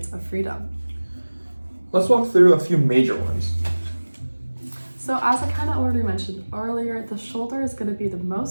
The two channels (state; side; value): inverted; both; correlation -1.00